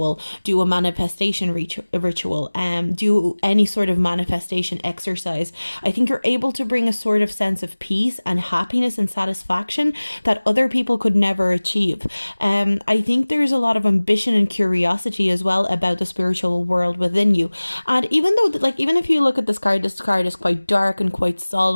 do a manifestation ritual, do any sort of manifestation exercise. I think you're able to bring a sort of sense of peace and happiness and satisfaction that other people could never achieve. I think there's a lot of ambition and curiosity as well about the spiritual world within you. And even though even if you look at this card is quite dark and quite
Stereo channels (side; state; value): both; inverted; correlation -1.00